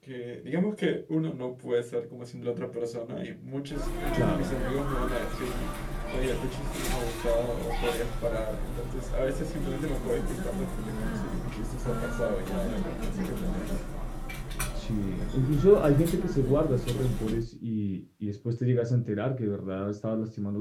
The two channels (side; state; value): both; identical; correlation 1.00